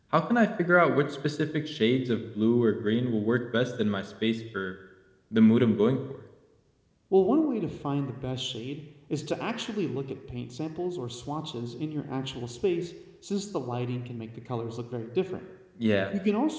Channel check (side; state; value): both; identical; correlation 1.00